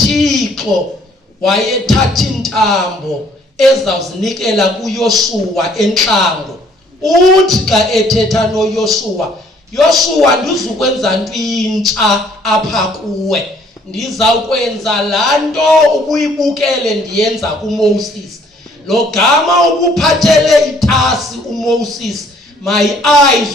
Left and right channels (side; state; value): both; normal; correlation 0.61